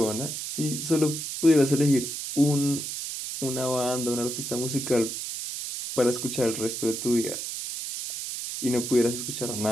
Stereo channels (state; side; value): noise; right; hiss, 5 dB below the sound